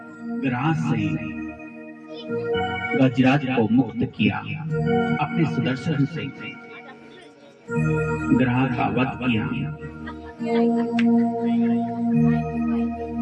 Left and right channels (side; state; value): both; identical; correlation 1.00